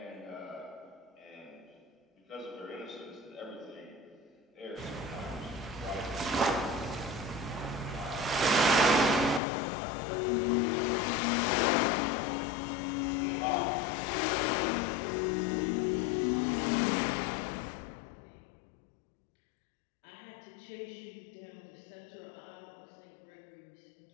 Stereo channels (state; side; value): drops out; right; at 9.4 s